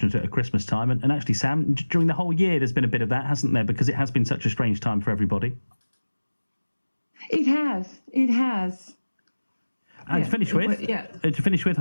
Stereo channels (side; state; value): both; inverted; correlation -1.00